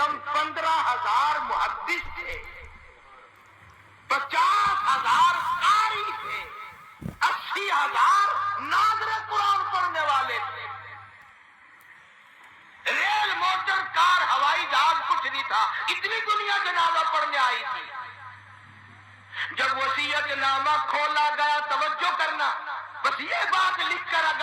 15,000 محدث تھے، 50,000 قاری تھے، 80,000 ناظر قرآن پڑھنے والے تھے۔ ریل، موٹر، کار، ہوائی جہاز کچھ نہیں تھا، اتنی دنیا جنازہ پڑھنے آئی تھی۔ جب وصیت نامہ کھولا گیا، توجہ کرنا، بس یہ بات لکھ کر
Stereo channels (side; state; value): both; identical; correlation 1.00